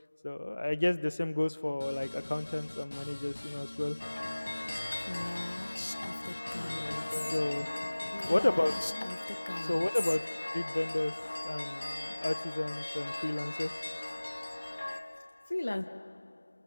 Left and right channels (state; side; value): inverted; both; correlation -1.00